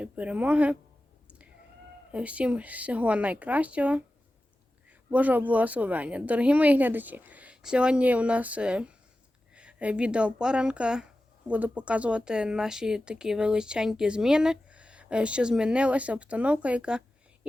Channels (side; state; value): both; normal; correlation 0.94